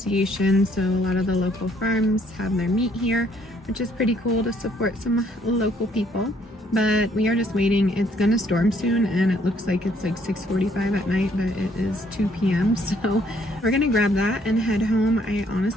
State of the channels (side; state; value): both; normal; correlation 0.66